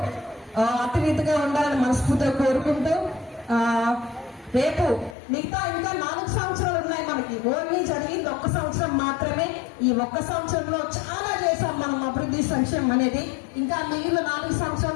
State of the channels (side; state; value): right; drops out; at 5.2 s